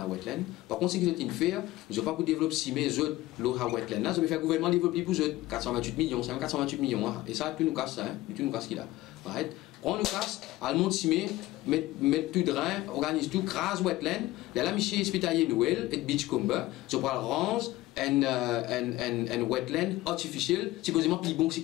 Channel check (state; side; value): quieter; right; 17.5 dB